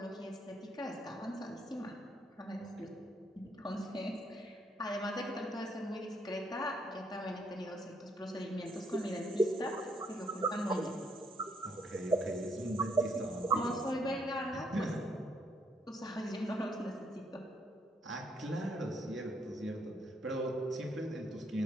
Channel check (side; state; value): both; normal; correlation 0.71